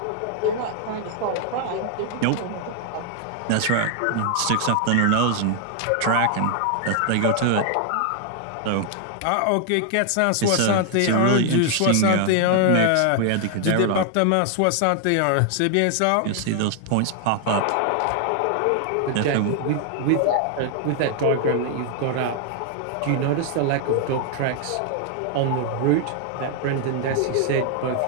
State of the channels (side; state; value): both; different; correlation 0.00